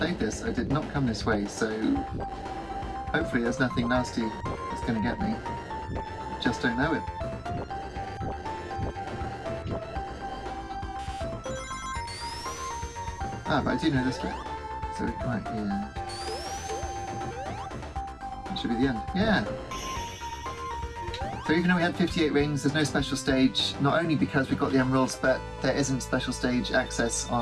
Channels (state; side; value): identical; both; correlation 1.00